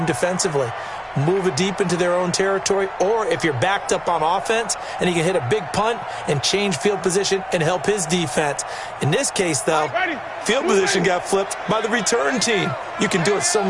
defensively, move it deep into their own territory, or if you're backed up on offense, and he can hit a big punt and change field position and help his defense. In this case, though, field position got flipped by the return team. You can do it so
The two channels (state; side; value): identical; both; correlation 1.00